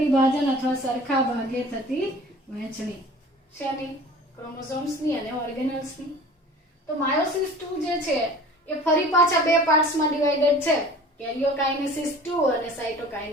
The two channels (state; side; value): normal; both; correlation 0.44